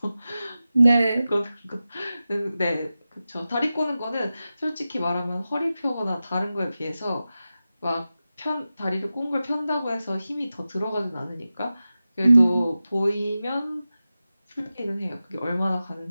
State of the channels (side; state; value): both; inverted; correlation -0.94